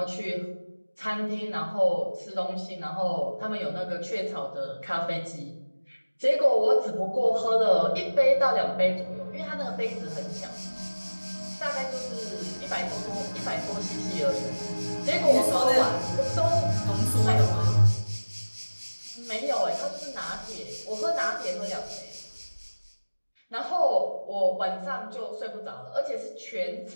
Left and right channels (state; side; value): inverted; both; correlation -1.00